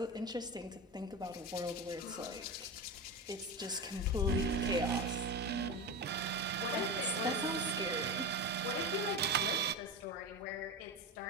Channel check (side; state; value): both; normal; correlation 0.22